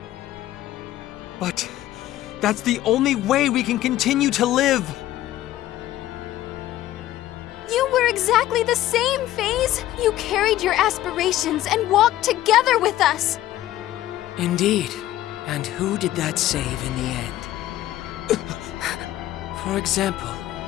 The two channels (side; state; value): right; quieter; 14.2 dB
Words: but that's the only way we can continue to live. You were exactly the same, FaZe. You carried your aspirations and walked together with us. Indeed. And who did that save in the end? For example,